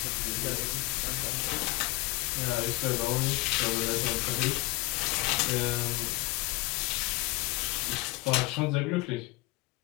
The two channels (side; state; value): right; quieter; 22.1 dB